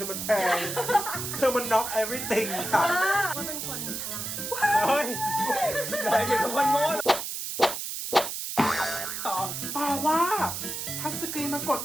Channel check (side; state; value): right; noise; hiss, 5 dB below the sound